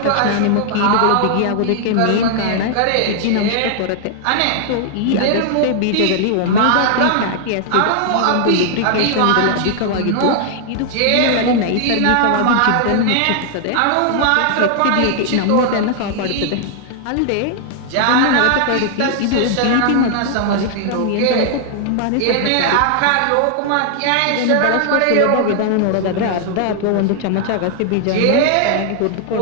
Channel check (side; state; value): both; different; correlation 0.00